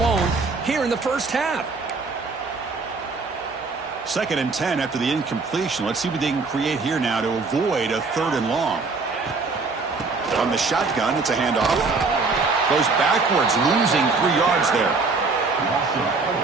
here in the first half. 2nd and 10 after the incompletion. Let's see what they can create here now to avoid a 3rd and long. On the shotgun, it's a handoff. Goes backwards, losing 3 yards there.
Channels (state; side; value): quieter; left; 4.1 dB